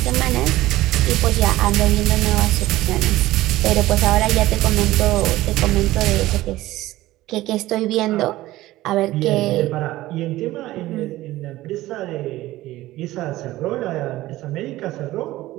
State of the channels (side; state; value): left; quieter; 16.7 dB